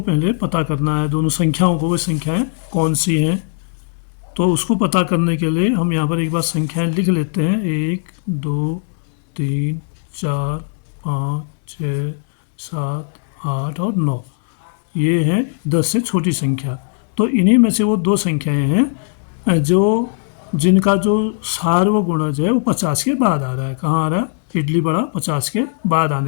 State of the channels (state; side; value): silent; right; digital silence